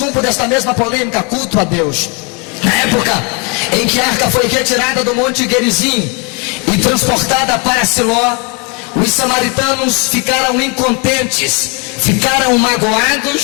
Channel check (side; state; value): right; quieter; 33.0 dB